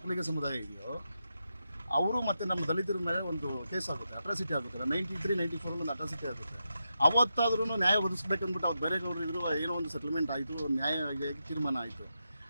ಸಮುದಾಯ ಇದೆಯೋ ಅವರು ಮತ್ತು ನಮ್ಮ ದಲಿತರ ಮೇಲೆ ಒಂದು ಕೇಸ್ ಆಗುತ್ತೆ, ಅಟ್ರಾಸಿಟಿ ಆಗುತ್ತೆ. 93-94 ಒಂದು ಅಟ್ರಾಸಿಟಿ ಆಗುತ್ತೆ. ಅವತ್ತಾದ್ರೂ ನ್ಯಾಯ ಒದಗಿಸ್ಬೇಕಂದ್ಬಿಟ್ಟು ಅವ್ರು ಬೇರೆ ಗೌಡರು ಇದ್ರು, ಏನೋ ಒಂದು ಸೆಟಲ್ಮೆಂಟ್ ಆಯಿತು, ನ್ಯಾಯ ತೀರ್ಮಾನ ಆಯಿತು.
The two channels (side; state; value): both; inverted; correlation -0.87